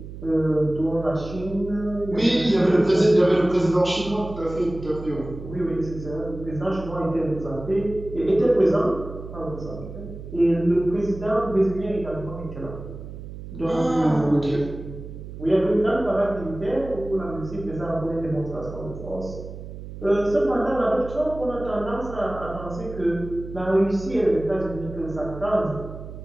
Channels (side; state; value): right; noise; hum, 12 dB below the sound